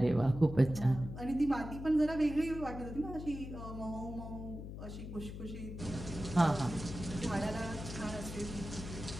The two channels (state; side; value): noise; left; hum, 9 dB below the sound